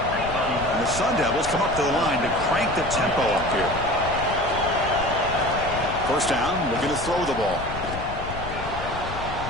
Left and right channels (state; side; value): noise; left; rumble, 9 dB below the sound